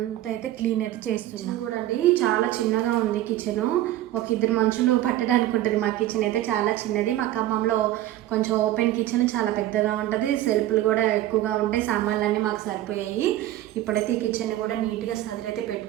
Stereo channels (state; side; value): quieter; left; 14.1 dB